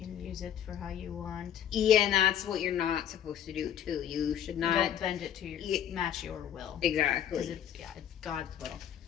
use it for how you want. Yeah, and that's what you're not supposed to do too. You should not. Don't bend it to match your will. Exactly. Because it's God's will.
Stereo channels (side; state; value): right; quieter; 9.9 dB